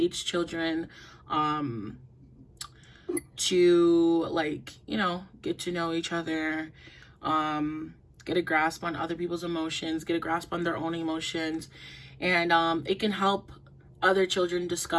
children, to like, get to know each other, get a grasp on other people's emotions, get a grasp on their own emotions. And it can help other children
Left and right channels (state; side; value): identical; both; correlation 1.00